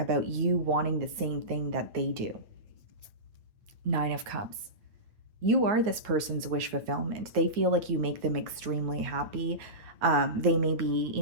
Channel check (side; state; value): left; late; 9.4 ms